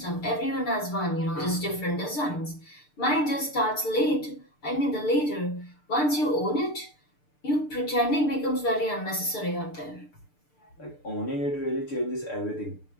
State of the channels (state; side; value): late; right; 6.7 ms